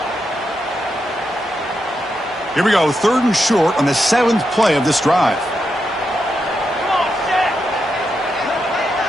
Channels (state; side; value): normal; both; correlation 0.84